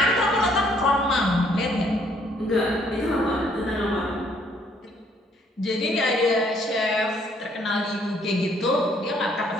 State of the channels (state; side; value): normal; both; correlation 0.65